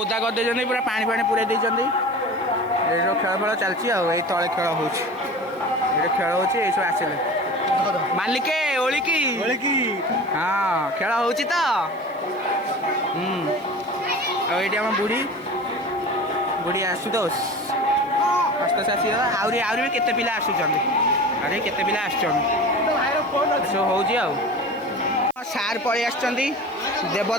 कर दे पूरा पानी पानी पूरा देते खेल फल चलती आई तले खेल हो खेल हो सब आसले मालिके ओलिकी हाँ खेल हो ये आम बुढ़ी आशुतोष आसी आहरी भी केते पिला आसुचंदी अरे केते पिला आसुचंदी सब हो सार पलि आसुचंदी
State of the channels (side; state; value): right; noise; hiss, 30 dB below the sound